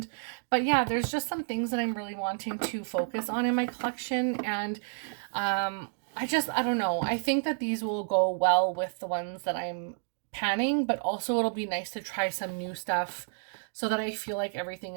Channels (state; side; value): silent; left; digital silence